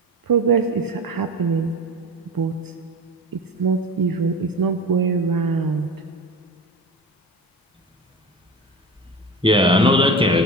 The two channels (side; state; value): both; normal; correlation 0.29